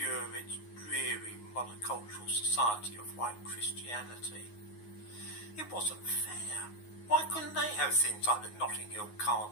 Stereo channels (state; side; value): late; right; 9.5 ms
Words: its dreary monocultural society of white Christianity? It wasn't fair. Why couldn't they have things like the Notting Hill